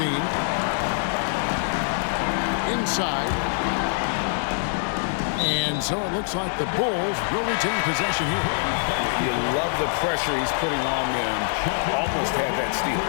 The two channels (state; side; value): silent; right; digital silence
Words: Inside. And so it looks like the Bulls will retain possession here. You love the pressure he's putting on them. Almost had that steal.